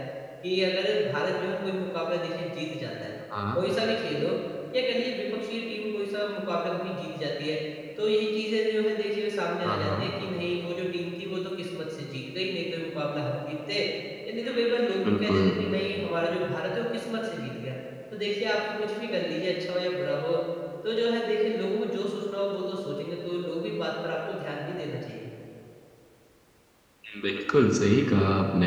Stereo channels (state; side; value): identical; both; correlation 1.00